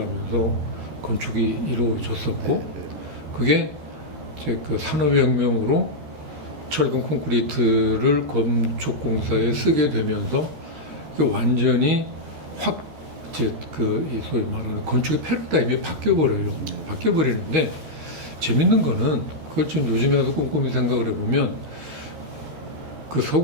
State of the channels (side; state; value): left; late; 13 ms